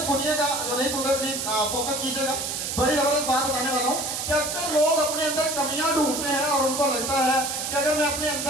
सुनिएगा, जो नहीं सुन रहे प्लीज फोकस कीजिएगा। बड़ी जबरदस्त बात बताने वाला हूँ कि अक्सर लोग अपने अंदर कमियां ढूंढते हैं और उनको लगता है कि अगर मैं अपने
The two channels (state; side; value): noise; right; hiss, 3 dB below the sound